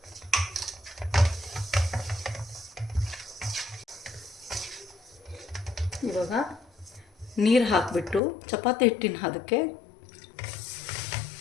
ಇವಾಗ ನೀರು ಹಾಕಿಬಿಟ್ಟು ಚಪಾತಿ ಹಿಟ್ಟಿನ ಹದಕ್ಕೆ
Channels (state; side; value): drops out; right; at 8.2 s